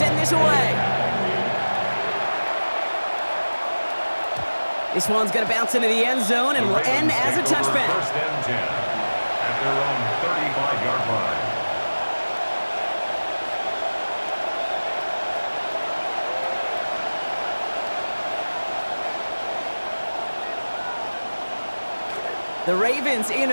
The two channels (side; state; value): both; inverted; correlation -1.00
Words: this away. This one's going to bounce into the end zone and will end as a touchback. First and 10 at their own 35-yard line. The Ravens in